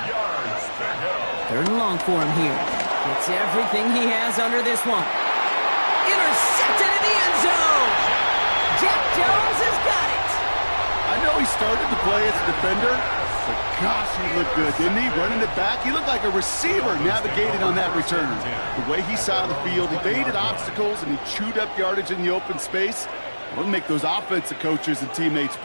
Third and long for him here. Gets everything he has under this one. Intercepted in the end zone. Jack Jones has got it. I know he started the play as a defender, but gosh, he looked good, didn't he? Running it back, he looked like a receiver navigating on that return. The way he saw the field, he evaded obstacles, and he chewed up yardage in the open space. It'll make those offensive coaches and teammates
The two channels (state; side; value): inverted; both; correlation -1.00